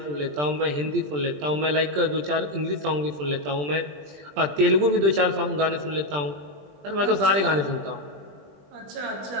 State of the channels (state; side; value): late; left; 20 ms